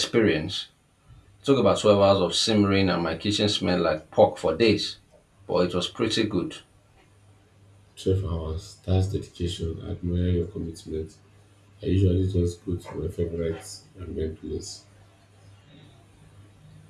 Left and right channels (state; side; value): identical; both; correlation 1.00